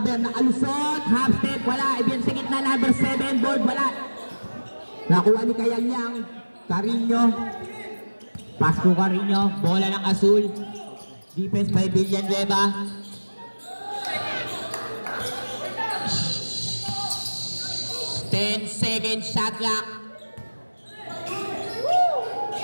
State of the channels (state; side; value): inverted; both; correlation -1.00